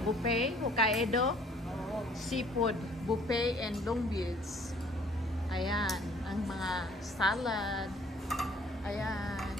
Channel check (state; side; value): normal; both; correlation 0.58